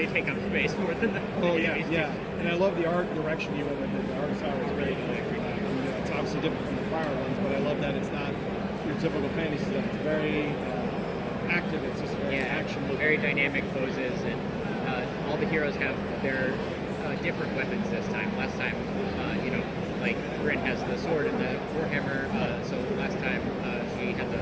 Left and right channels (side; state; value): both; identical; correlation 1.00